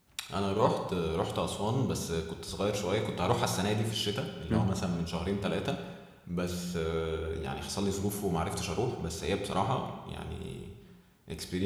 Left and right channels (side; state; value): both; identical; correlation 1.00